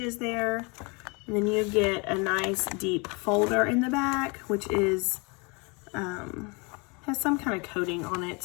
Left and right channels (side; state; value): right; quieter; 30.2 dB